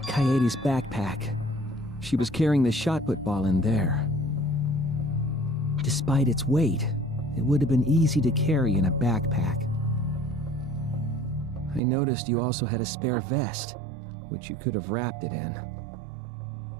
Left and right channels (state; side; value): drops out; left; at 11.8 s